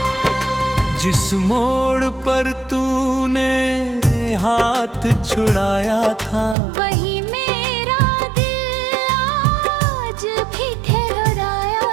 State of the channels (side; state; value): left; drops out; at 6.6 s